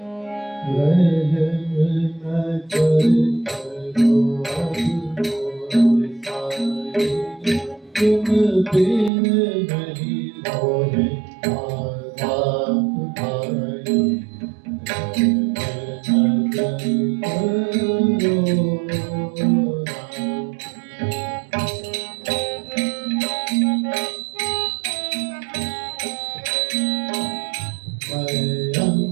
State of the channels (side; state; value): left; drops out; at 9.1 s